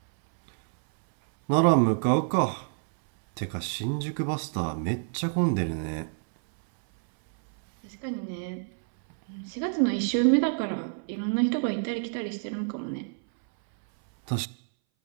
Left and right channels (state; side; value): silent; left; 60 dB below the other